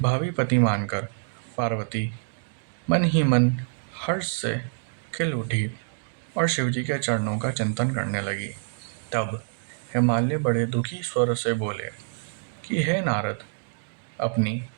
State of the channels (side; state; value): left; silent; digital silence